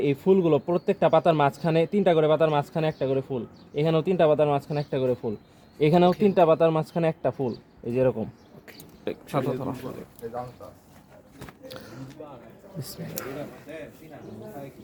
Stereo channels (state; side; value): identical; both; correlation 1.00